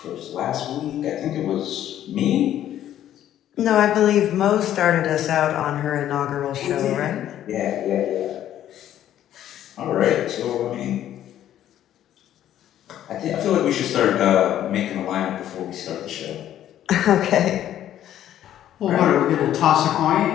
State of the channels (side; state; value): right; quieter; 11.6 dB